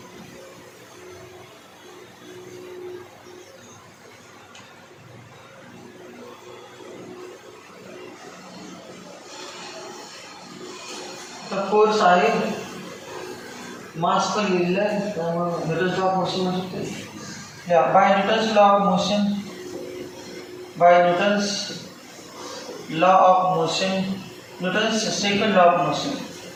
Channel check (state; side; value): identical; both; correlation 1.00